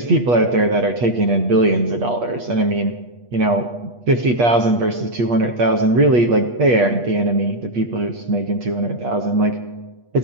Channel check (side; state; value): left; late; 8.4 ms